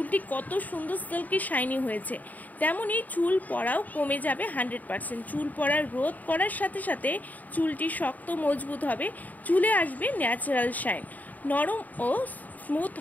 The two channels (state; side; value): late; right; 0.079 ms